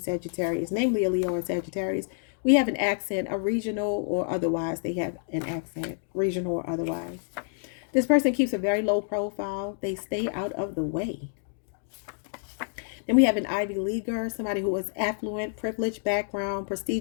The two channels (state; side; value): silent; right; digital silence